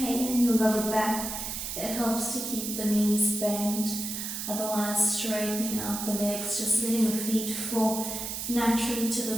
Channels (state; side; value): noise; right; hiss, 5 dB below the sound